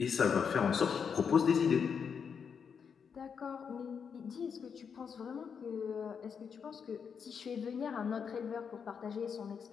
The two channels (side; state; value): right; quieter; 6.6 dB